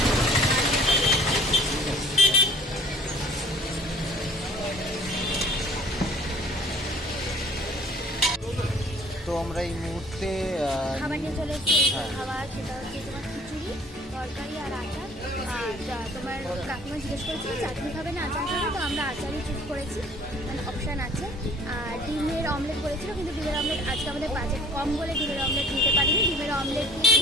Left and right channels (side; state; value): both; normal; correlation 0.51